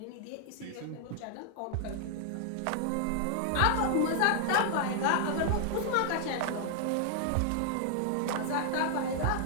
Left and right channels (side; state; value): both; different; correlation 0.00